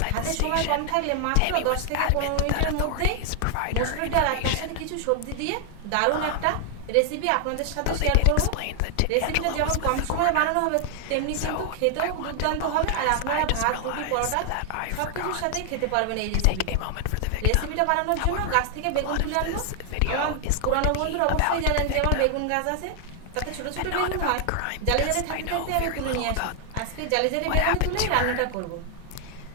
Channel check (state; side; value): different; both; correlation 0.00